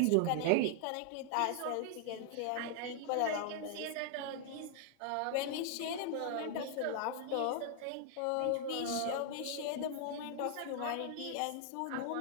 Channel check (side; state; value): both; different; correlation 0.00